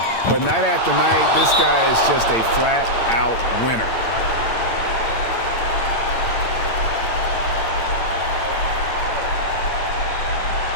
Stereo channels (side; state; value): right; late; 8.8 ms